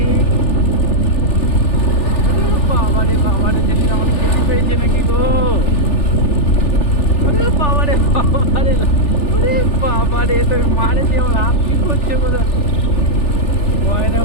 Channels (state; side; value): late; right; 3.4 ms